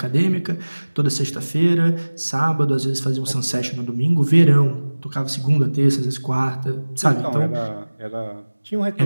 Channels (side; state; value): both; inverted; correlation -1.00